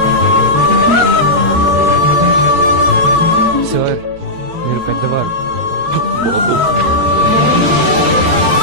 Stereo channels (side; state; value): left; late; 18 ms